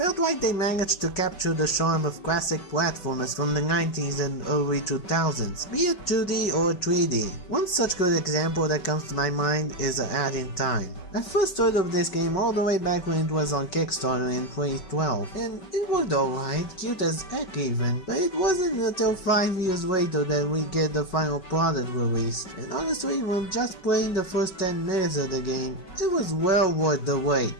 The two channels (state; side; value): late; right; 5.3 ms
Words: like they managed to capture the charm of classic platformers from the 90s and early 2000s, be it 2D or 3D. One such good example that comes to my mind is A Hat in Time. I first heard of this game all the way back when it was on Kickstarter in 2012, and it worked alright, cute as heck even, but it wasn't until 5 years later that we get the final product released, and honestly when just playing the first 10 minutes of the game, it was well worth the